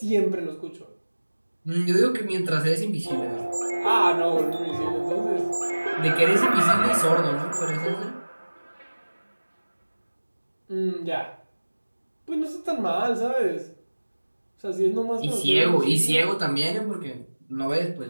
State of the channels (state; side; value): inverted; both; correlation -1.00